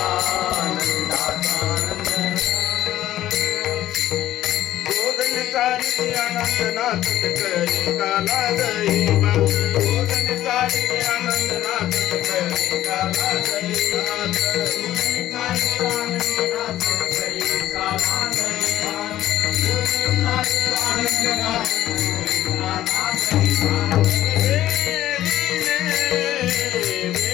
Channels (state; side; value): quieter; right; 13.5 dB